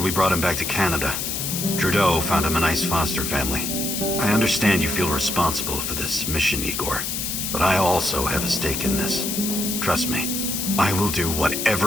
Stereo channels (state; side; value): noise; left; hiss, 2 dB below the sound